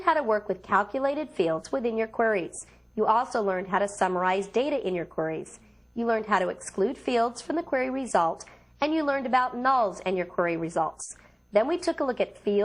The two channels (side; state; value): both; identical; correlation 1.00